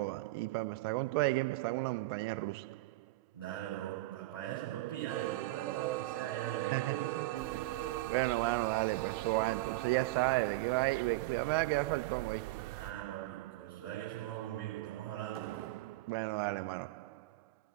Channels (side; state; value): left; quieter; 19.2 dB